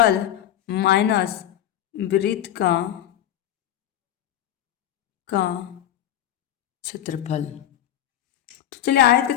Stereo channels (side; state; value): right; quieter; 11.4 dB